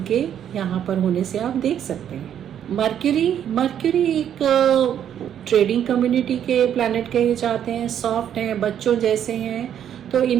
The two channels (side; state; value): left; quieter; 9.6 dB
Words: के यहाँ पर होने से आप देख सकते हैं। मर्क्यूरी एक ट्रेडिंग कम्युनिटी के प्लैनेट कहे जाते हैं। सॉफ्ट हैं, बच्चों जैसे हैं, तो